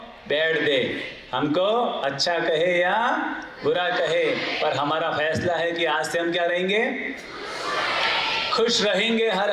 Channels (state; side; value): identical; both; correlation 1.00